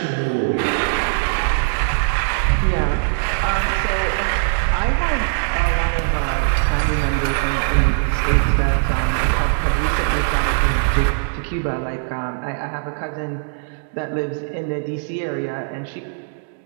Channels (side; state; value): left; silent; digital silence